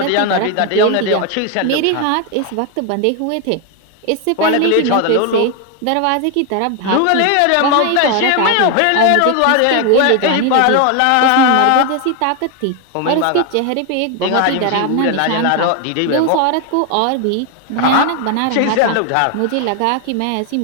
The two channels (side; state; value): both; different; correlation 0.01